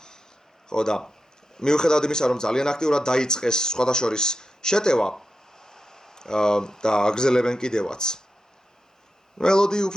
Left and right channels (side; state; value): both; normal; correlation 0.89